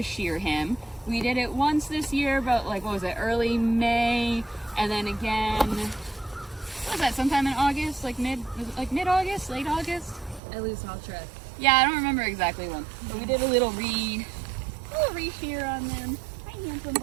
shear him. We did it once this year, about like, what was it, early May, and then again, what was that, sometime in August, like mid-August, late August? I lose all track. Yeah, I don't remember exactly when. But we did a little re-shear on them. Hi, handsome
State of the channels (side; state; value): left; drops out; at 10.4 s